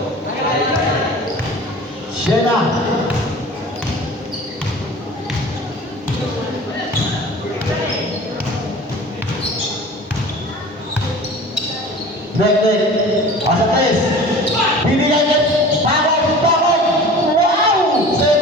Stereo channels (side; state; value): both; normal; correlation 0.40